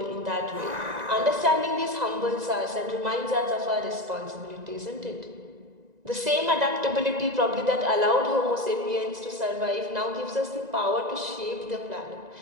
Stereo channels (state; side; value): late; left; 1.9 ms